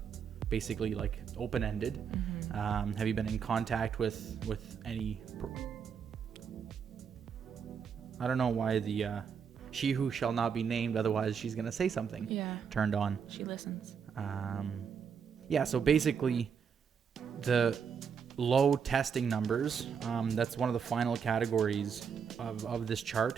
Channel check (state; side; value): quieter; left; 6.8 dB